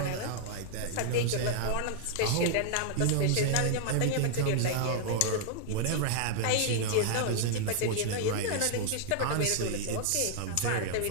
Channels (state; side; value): different; both; correlation 0.00